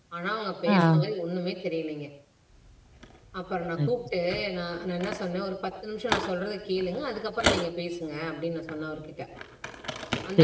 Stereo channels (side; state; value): both; identical; correlation 1.00